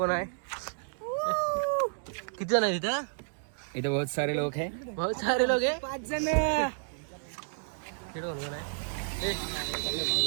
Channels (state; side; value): silent; left; digital silence